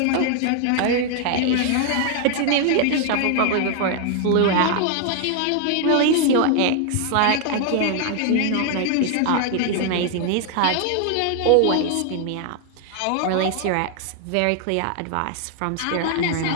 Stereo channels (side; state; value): both; different; correlation 0.00